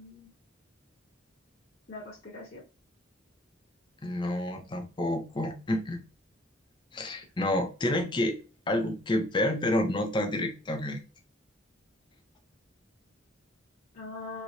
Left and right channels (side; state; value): both; normal; correlation 0.58